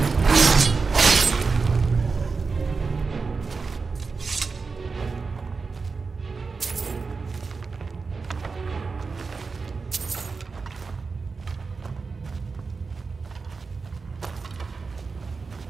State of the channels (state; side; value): quieter; left; 4.6 dB